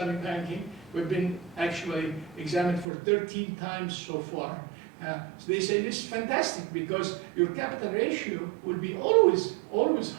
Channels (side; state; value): left; drops out; at 2.9 s